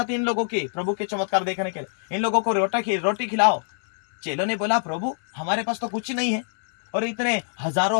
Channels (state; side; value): silent; right; digital silence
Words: इन लोगों की प्रभु के चमत्कार देखने के लिए, इन लोगों को रोटी खिलाओ। चेलों ने बोला, प्रभु हमारे पास तो कुछ नहीं है, और इतने